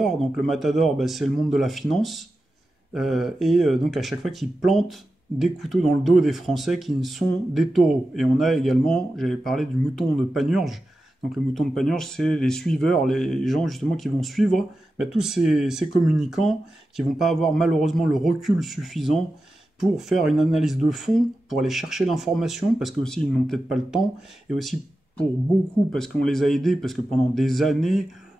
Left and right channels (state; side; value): normal; both; correlation 0.92